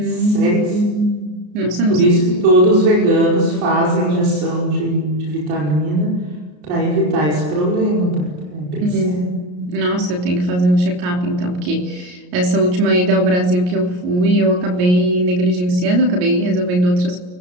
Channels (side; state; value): left; late; 33 ms